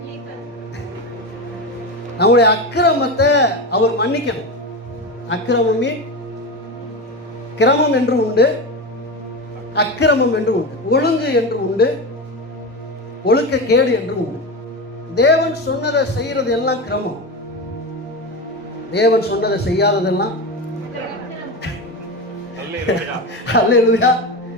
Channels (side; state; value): both; normal; correlation 0.21